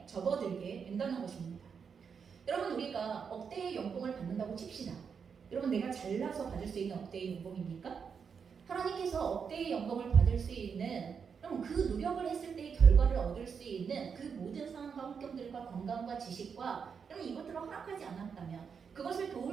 접어들게 된다는 것입니다. 여러분 우리가 억대의 연봉을 받는다고 칩시다. 여러분 내가 잘나서 받을 수 있는 억대의 연봉입니까? 하나님께서 억대의 연봉을 받을 수 있는 그럼 그 노력을 했을 때의 결과를 얻을 수 있는 그 모든 상황과 환경들과 건강과 지식과 그럼 이것들을 허락하지 않았다면 그것을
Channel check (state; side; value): quieter; left; 6.4 dB